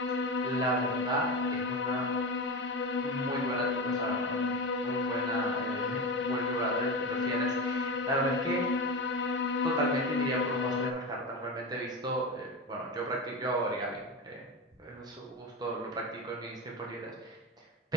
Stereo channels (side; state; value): both; normal; correlation 0.21